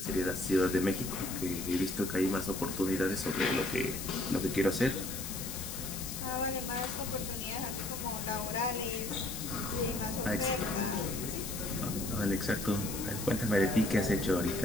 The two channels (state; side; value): noise; left; hiss, 7 dB below the sound